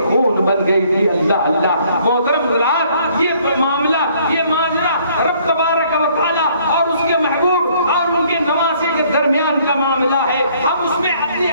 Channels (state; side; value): inverted; both; correlation -0.62